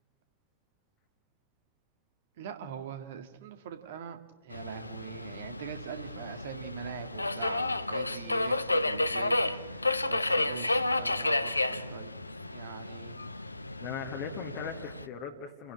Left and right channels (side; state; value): both; inverted; correlation -0.85